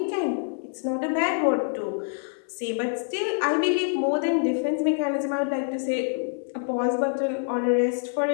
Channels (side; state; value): right; silent; digital silence